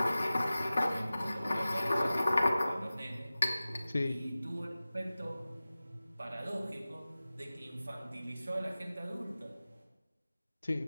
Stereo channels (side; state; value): both; inverted; correlation -0.96